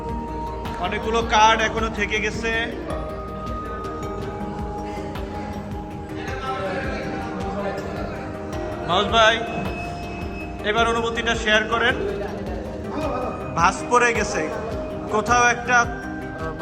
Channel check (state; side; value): identical; both; correlation 1.00